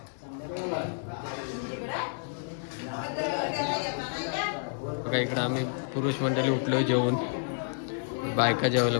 बघा इकडं आम्ही पुरुष मंडळी उठलो जेवून बायका जेवायला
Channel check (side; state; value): right; silent; 58 dB below the other